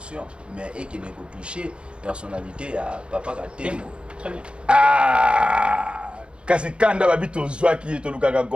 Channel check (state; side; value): late; left; 0.056 ms